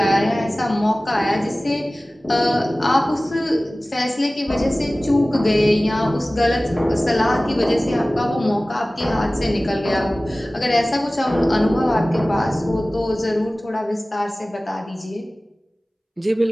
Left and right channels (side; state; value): both; normal; correlation 0.98